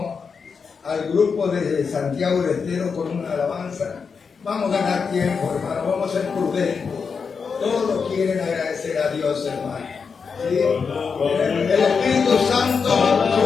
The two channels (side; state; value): right; quieter; 5.6 dB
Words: al grupo de Santiago del Estero con una alabanza, vamos a ganar tiempo, hermano, vamos a ser prudentes. Todos quieren agradecer a Dios, hermano. ¿Sí? El Espíritu Santo